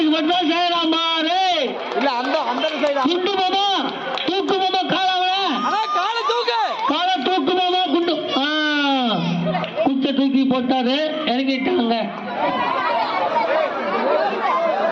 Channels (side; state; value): both; identical; correlation 1.00